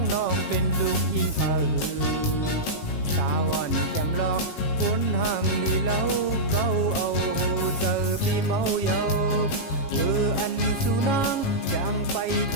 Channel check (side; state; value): right; late; 7.4 ms